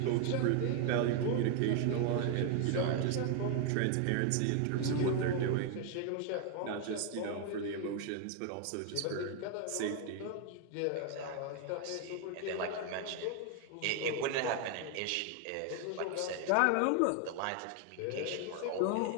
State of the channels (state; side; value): different; both; correlation 0.01